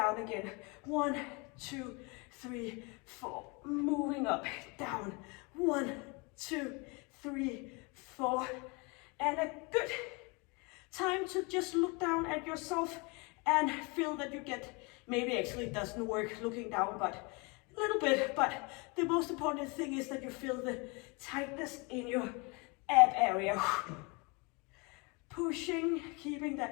again. 1, 2, 3, 4, moving up, down. 1, 2, 3, 4, and a good time to just look down at yourself and feel that you get, maybe actually it doesn't work looking down, but a little bit, but the most important thing is that you feel the tightness in your ab area. Pushing, keeping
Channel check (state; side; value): quieter; right; 29.6 dB